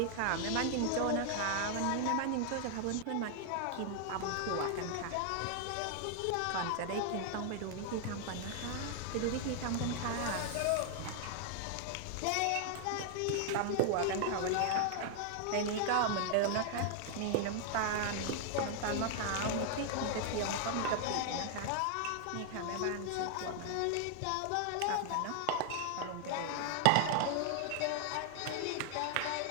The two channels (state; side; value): different; both; correlation 0.00